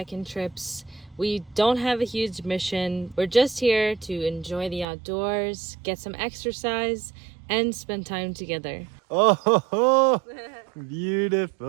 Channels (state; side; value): drops out; left; at 4.9 s